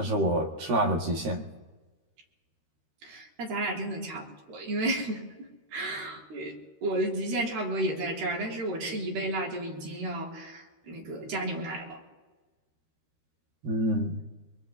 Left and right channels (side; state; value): left; late; 13 ms